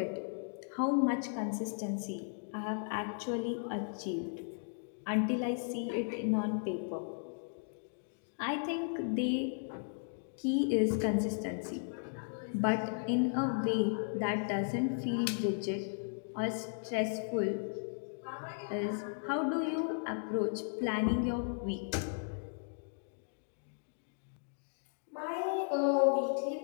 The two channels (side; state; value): right; silent; digital silence